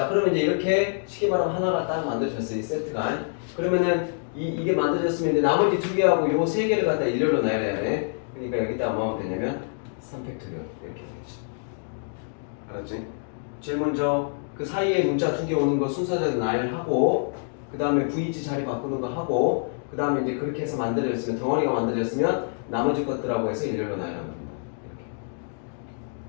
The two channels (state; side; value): silent; right; digital silence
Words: 그러면 이제 이렇게 쉽게 말하면 하나가 딱 만들어졌어요. 이 세트가. 그러면은 이게 만들어졌으면 이제 나머지 2개하고 요 3개를 갖다 일렬로 놔야 돼. 그러니까 여기다 뭐 하면 되냐면 3팩토리얼 이렇게 되지. 알았지? 제일 먼저 그 사이에 문자 2개 오는 거 순서대로 나열하고, 그 다음에 VG 자리 바꾸는 거 하고, 그 다음에 이제 그렇게 해서 만들어졌으면, 덩어리가 만들어졌으면 나머지 것들하고 해서 일렬로 나열하는 겁니다. 이렇게.